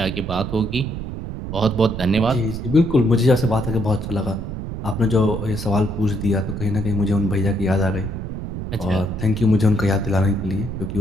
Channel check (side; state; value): right; noise; rumble, 6 dB below the sound